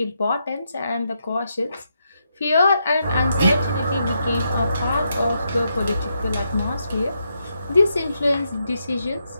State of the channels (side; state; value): both; inverted; correlation -0.81